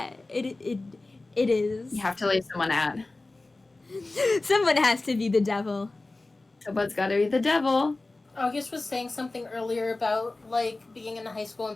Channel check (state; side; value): quieter; right; 3.1 dB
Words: it is. You have to leave someone out. Someone has to be the devil. Someone's got to be the devil. August was saying something earlier about, like, being in high school